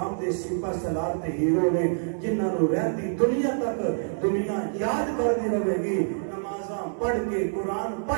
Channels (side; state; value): left; silent; digital silence